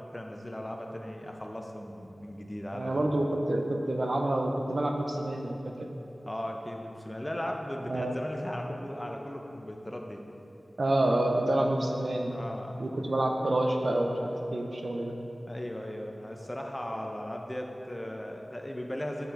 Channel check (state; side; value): normal; both; correlation 0.97